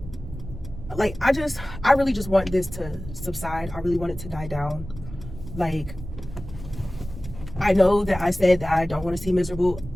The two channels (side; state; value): right; noise; rumble, 12 dB below the sound